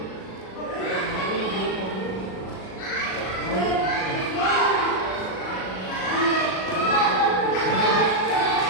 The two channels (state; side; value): late; right; 37 ms